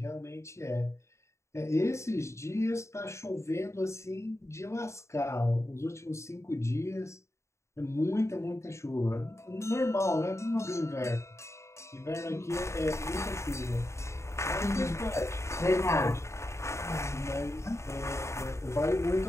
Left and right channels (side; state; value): right; late; 0.14 ms